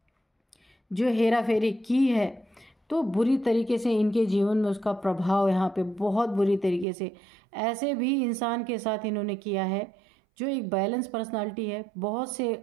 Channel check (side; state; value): left; drops out; at 6.9 s